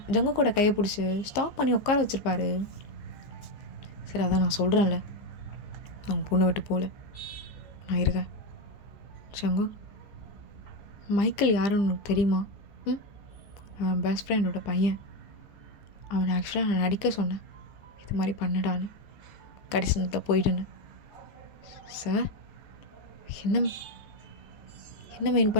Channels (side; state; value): right; late; 15 ms